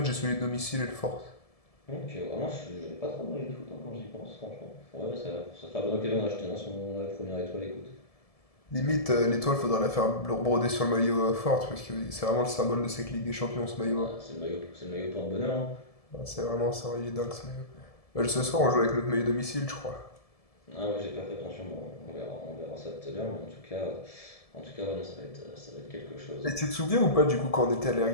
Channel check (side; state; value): right; late; 1.7 ms